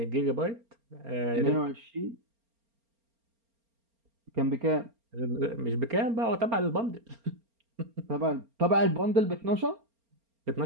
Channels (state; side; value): late; left; 4.3 ms